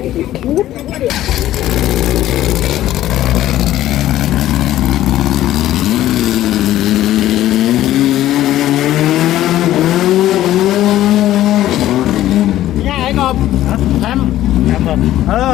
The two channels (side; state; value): right; quieter; 13.7 dB